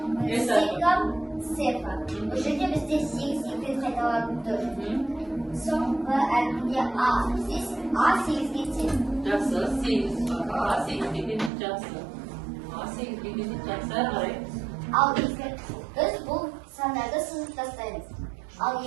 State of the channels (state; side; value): drops out; left; at 11.5 s